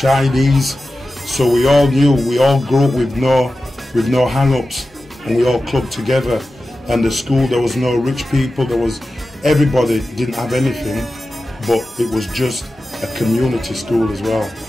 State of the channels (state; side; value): normal; both; correlation 0.94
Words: so we all knew, we all grew up with no hang-ups, and we all clubbed together. And the school, there was no rich people, everybody didn't have anything, but it was just a community school as well.